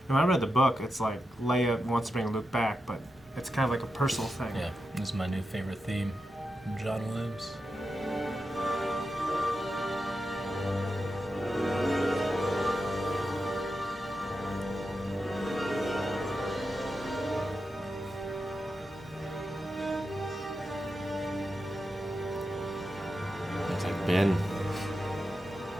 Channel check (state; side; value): normal; both; correlation 0.89